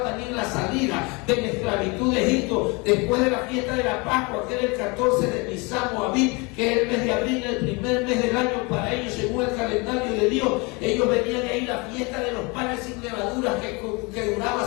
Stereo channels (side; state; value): right; quieter; 28.1 dB